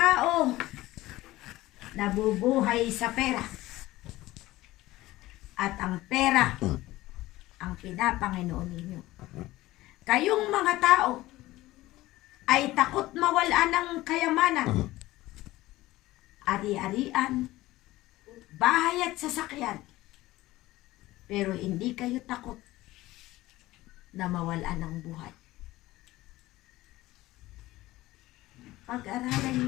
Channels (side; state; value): right; quieter; 17.5 dB